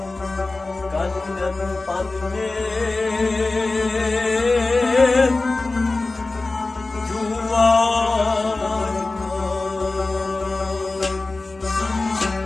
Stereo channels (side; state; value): right; quieter; 3.3 dB